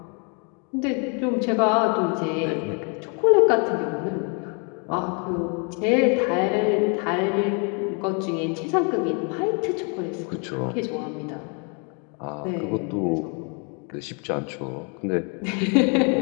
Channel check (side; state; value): right; quieter; 36.2 dB